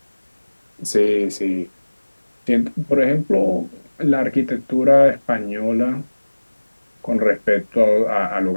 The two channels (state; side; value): inverted; both; correlation -1.00